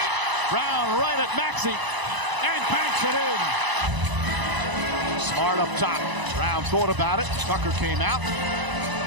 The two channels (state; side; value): late; left; 1.0 ms